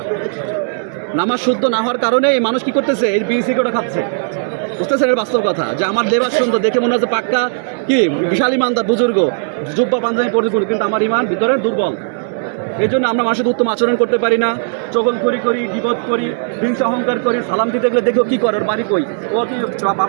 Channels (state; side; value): silent; left; digital silence